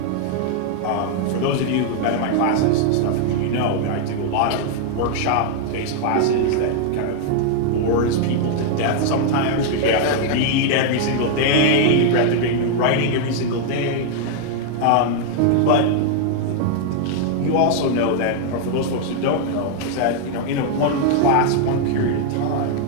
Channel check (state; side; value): different; both; correlation 0.00